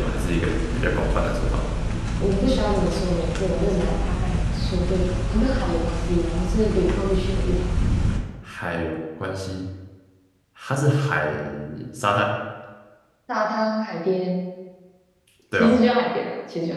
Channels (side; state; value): both; identical; correlation 1.00